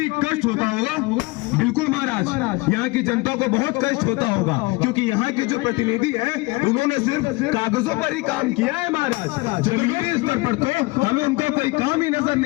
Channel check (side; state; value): right; quieter; 23.5 dB